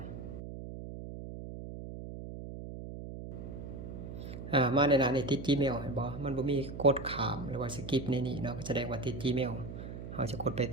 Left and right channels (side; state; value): right; noise; hum, 9 dB below the sound